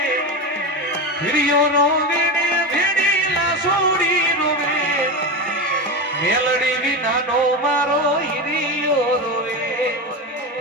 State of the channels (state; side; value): normal; both; correlation 0.19